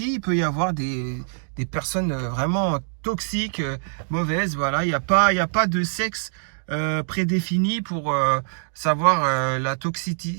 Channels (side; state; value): left; silent; 63 dB below the other